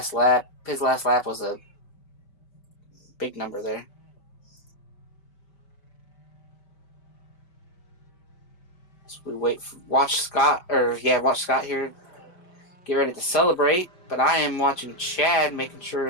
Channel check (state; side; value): late; right; 5.1 ms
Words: lap, his last lap was a big number there. So we watch Scott here get ready to celebrate. But I am watching Chad, making